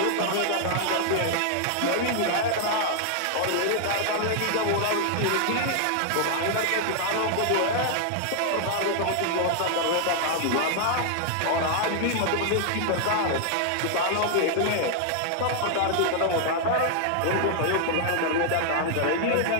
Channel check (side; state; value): both; different; correlation 0.00